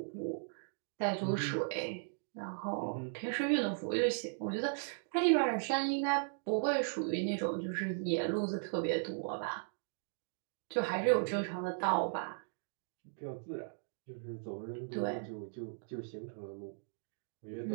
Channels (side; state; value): left; silent; digital silence